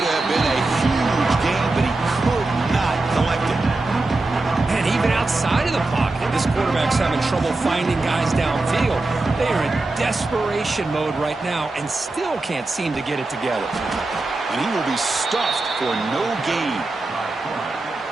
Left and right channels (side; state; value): left; quieter; 3.1 dB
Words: have been a huge game, but he could not collect it. And even outside of the pocket, this quarterback's having trouble finding guys downfield. They are in desperation mode right now and still can't seem to get it together. And he will be stuffed for no gain.